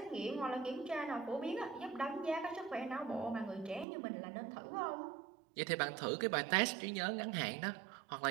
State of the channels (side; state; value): left; drops out; at 3.9 s